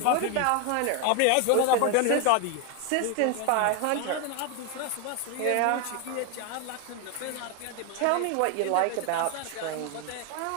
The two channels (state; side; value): different; both; correlation 0.01